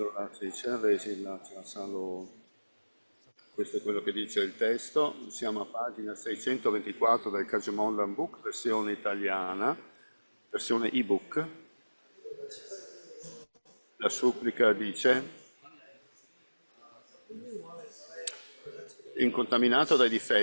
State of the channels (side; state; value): both; inverted; correlation -1.00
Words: about the supplication, Questo è quello che dice il testo. Siamo a pagina 624 del Kajamondan Book, versione italiana, versione ebook. La supplica dice: incontaminato dai